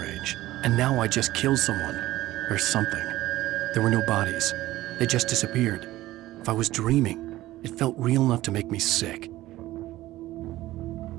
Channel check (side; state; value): left; quieter; 16.2 dB